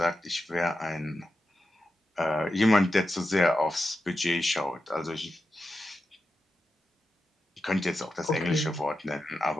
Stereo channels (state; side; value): normal; both; correlation 0.90